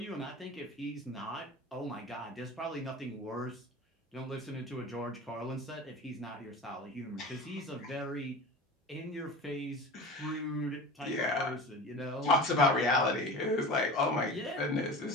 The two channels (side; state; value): both; normal; correlation 0.34